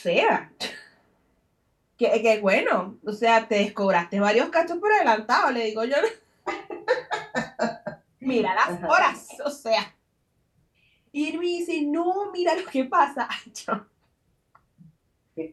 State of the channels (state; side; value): identical; both; correlation 1.00